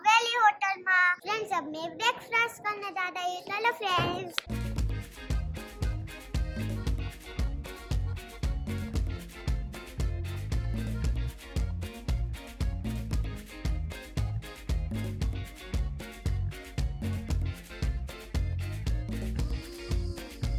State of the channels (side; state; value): both; identical; correlation 1.00